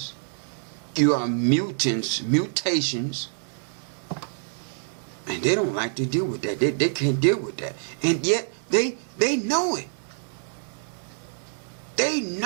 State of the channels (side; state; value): left; silent; 61 dB below the other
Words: You are mutations. And they don't like to deal with that. They can't deal with that. And yet they know it. They